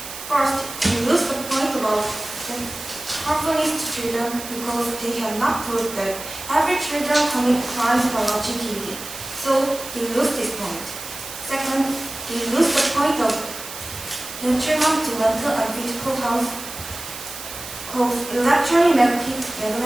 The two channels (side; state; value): right; noise; hiss, 11 dB below the sound